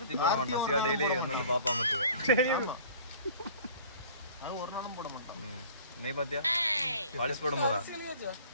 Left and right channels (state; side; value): inverted; both; correlation -0.49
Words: சிவா டெய்லி வந்து பாப்பா மட்டும் ஒரு நாளும் போட மாட்டான். நீ பாத்தியா பாலிஷ் போடும்போதா?